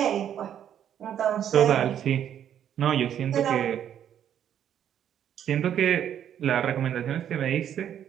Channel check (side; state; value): left; quieter; 9.8 dB